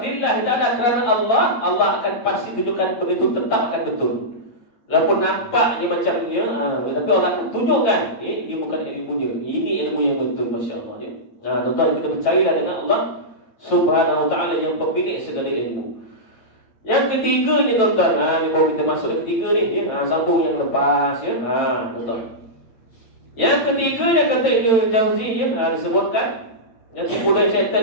ta'ala kerana Allah, Allah akan pasti tunjukkan benda itu tetap akan betul. Walaupun nampak ni macam ni, tapi orang akan tunjukkan dia bukan ilmunya. Ini ilmu yang betul, masya-Allah ya. Tuan-tuan, kita percayalah dengan Allah Subhanahu wa ta'ala yang pemilik segala ilmu. Yang ketiga ni tuan-tuan, ni baru kita masuk ke ketiga ni ya. Sambung yang lepas ya. Tuan-tuan. Yang ketiganya kata Ibnu Jauzi ya, disebutkan yang tipu daya syaitan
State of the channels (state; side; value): late; right; 9.0 ms